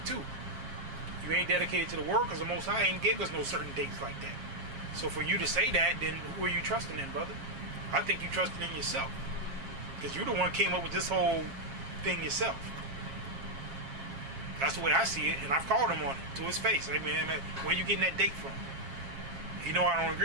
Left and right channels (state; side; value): late; left; 7.4 ms